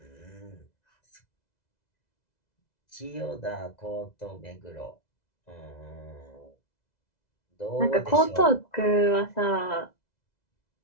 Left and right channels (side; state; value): right; late; 2.0 ms